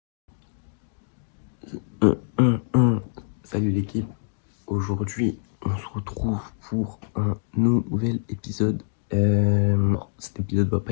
Salut l'équipe. Aujourd'hui, on se retrouve pour un nouvel épisode. Cet épisode va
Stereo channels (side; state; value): right; silent; digital silence